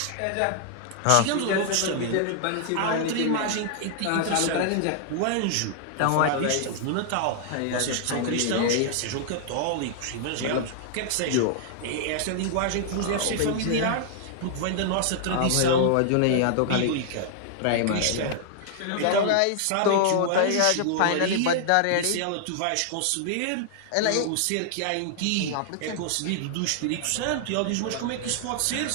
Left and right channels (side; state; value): both; different; correlation -0.01